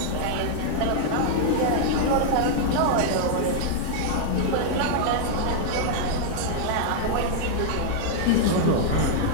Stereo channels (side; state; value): both; different; correlation -0.01